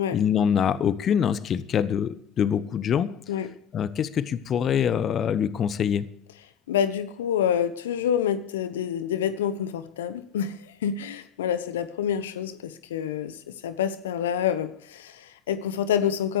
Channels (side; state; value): right; quieter; 8.3 dB